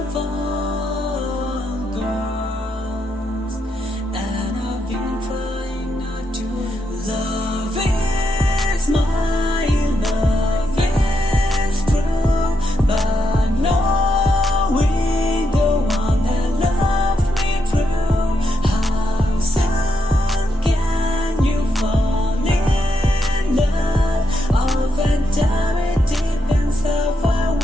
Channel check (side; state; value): both; normal; correlation 0.81